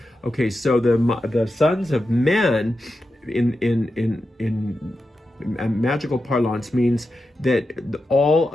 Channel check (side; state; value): both; normal; correlation 0.90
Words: Okay, so the sons of men in magical parlance means that all